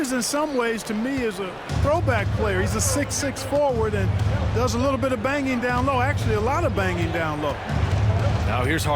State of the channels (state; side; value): identical; both; correlation 1.00